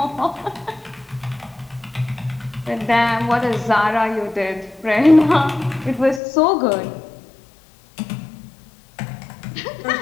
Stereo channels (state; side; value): drops out; right; at 6.2 s